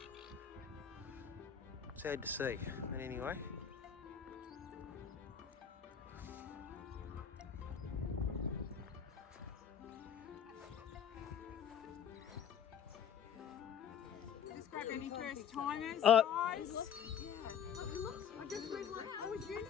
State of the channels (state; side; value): quieter; right; 8.2 dB